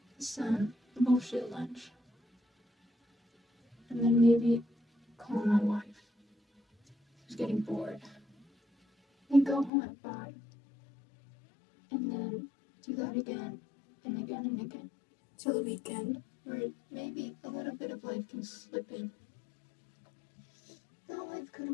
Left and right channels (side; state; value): right; drops out; at 9.7 s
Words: some bullshit lunch. And then maybe call my wife, who's getting bored. And go home at 5. And then do that again and again and again. Till the weekend, where maybe a little bit of life can slip in. No, life